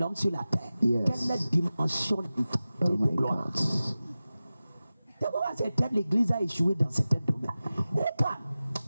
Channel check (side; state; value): both; inverted; correlation -0.95